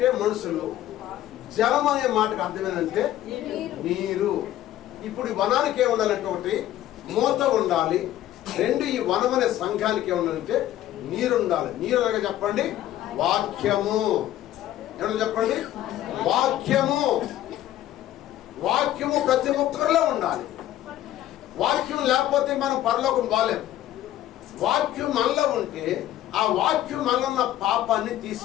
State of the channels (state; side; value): quieter; right; 13.2 dB